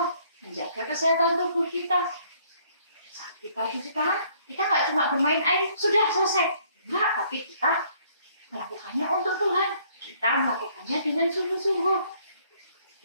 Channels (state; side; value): inverted; both; correlation -0.63